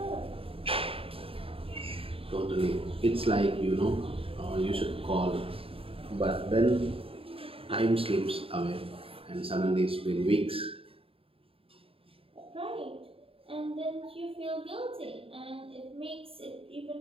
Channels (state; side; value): late; left; 0.27 ms